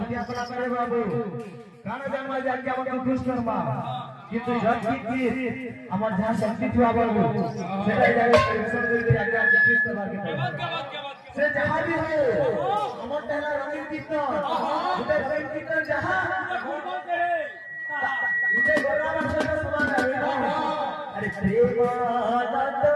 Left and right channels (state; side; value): identical; both; correlation 1.00